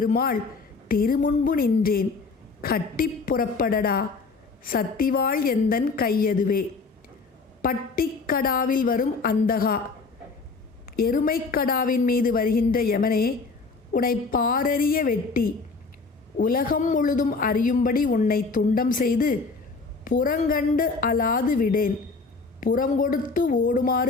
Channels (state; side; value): quieter; right; 4.2 dB